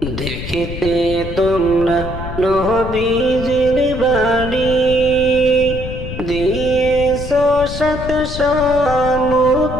দেখিতে তোমরা নবীজির বাড়ি দিয়েছ সাত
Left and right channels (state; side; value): noise; left; rumble, 8 dB below the sound